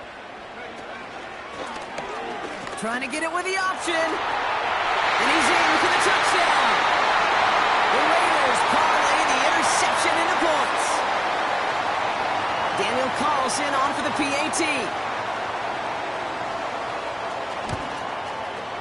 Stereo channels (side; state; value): both; identical; correlation 1.00